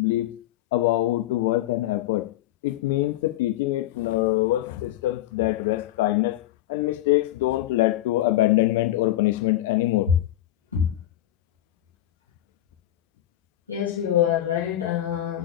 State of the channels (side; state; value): right; quieter; 13.8 dB